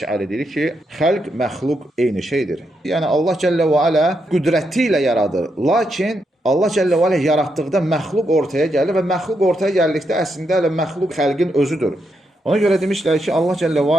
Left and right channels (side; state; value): both; normal; correlation 0.81